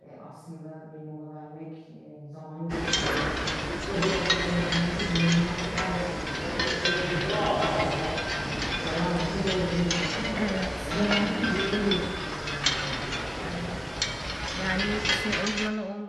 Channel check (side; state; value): both; identical; correlation 1.00